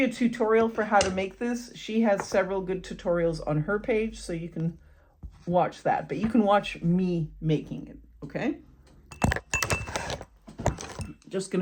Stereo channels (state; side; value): identical; both; correlation 1.00